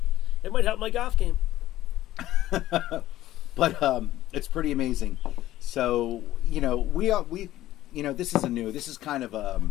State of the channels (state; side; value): quieter; right; 14.6 dB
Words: It might help my golf game. But it's pretty amazing. So, this is kind of